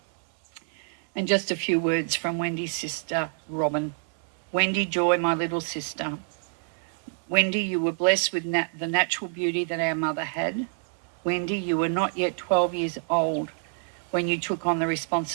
And just a few words from Wendy's sister, Robin. Wendy Joy, my little sister. Wendy, you were blessed with the natural beauty that our mother had. Wendy, you were not yet 12 years old when you took on the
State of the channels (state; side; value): silent; left; 60 dB below the other